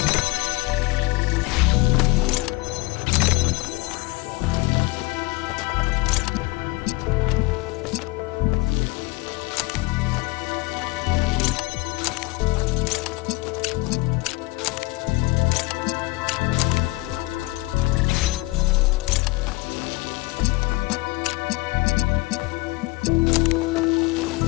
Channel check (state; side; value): quieter; right; 23.2 dB